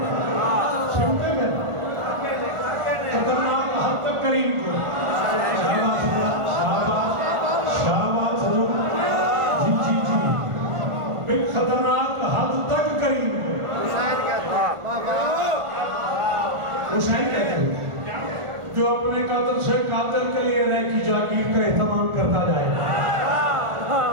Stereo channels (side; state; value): left; late; 1.4 ms